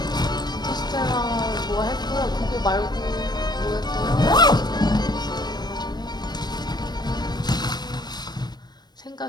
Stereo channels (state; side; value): late; right; 0.20 ms